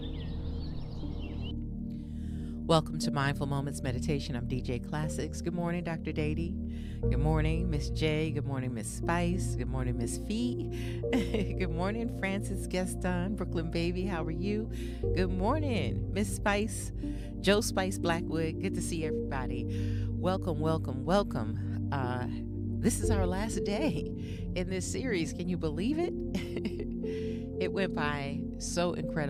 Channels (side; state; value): both; identical; correlation 1.00